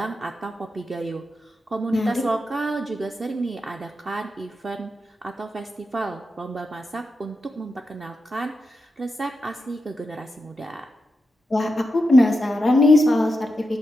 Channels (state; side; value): normal; both; correlation 0.87